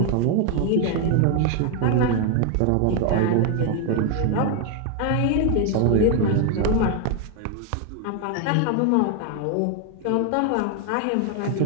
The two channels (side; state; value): both; different; correlation 0.01